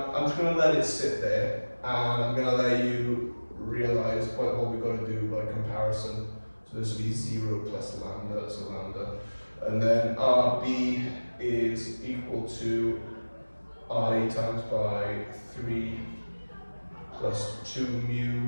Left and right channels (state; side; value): inverted; both; correlation -1.00